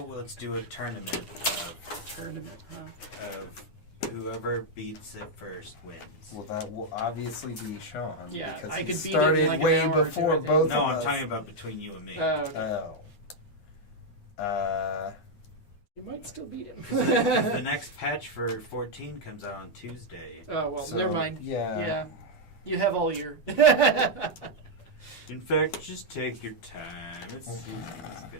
let's do a tournament Tournament, huh? of whoever beats it first wins. Well, that will obviously be Sean. Yeah, because I he could beat it in started like an way hour or two, I before think. both No, of I'm us. talking about between you and me. Oh. You might still beat him. The next patch for 14 comes out on Tuesday. Oh, well, So, never mind. yeah. Yeah. You have all year. In fact, just take your time. It's gonna be.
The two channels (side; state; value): right; late; 9.8 ms